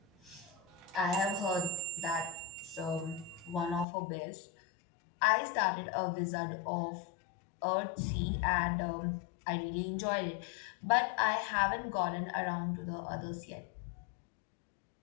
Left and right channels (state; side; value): drops out; right; at 3.9 s